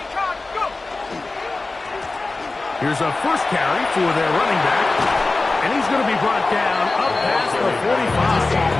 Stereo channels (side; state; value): right; quieter; 3.4 dB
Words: Here's a first carry for their running back. And he's going to be brought down up past the 45.